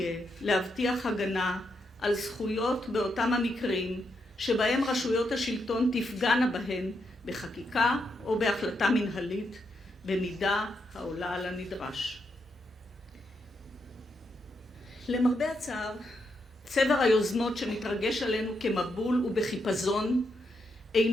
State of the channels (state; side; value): normal; both; correlation 0.81